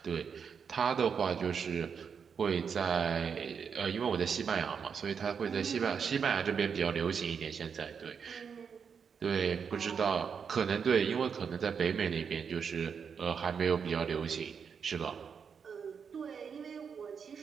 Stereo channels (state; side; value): quieter; left; 6.5 dB